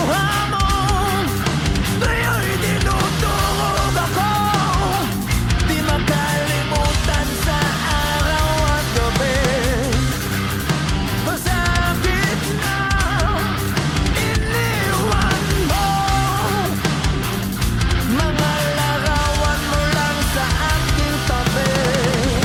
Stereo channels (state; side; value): identical; both; correlation 1.00